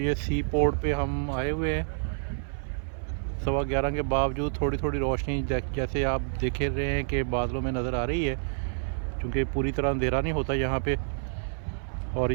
सी पोर्ट पे हम आए हुए हैं। 11:15 के बावजूद थोड़ी थोड़ी रोशनी जैसे आप देख रहे हैं कि बादलों में नज़र आ रही है, क्योंकि पूरी तरह अंधेरा नहीं होता यहाँ पे। और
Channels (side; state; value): left; silent; 56 dB below the other